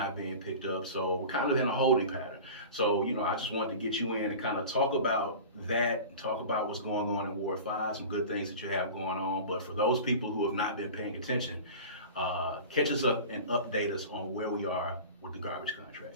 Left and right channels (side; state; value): both; inverted; correlation -0.36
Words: being picked up. So we're kind of in a holding pattern. So, I just wanted to get you in and kind of talk about that, talk about what's going on in Ward 5, some good things that you have going on. But for those people who have not been paying attention, catch us up and update us on where we are with the garbage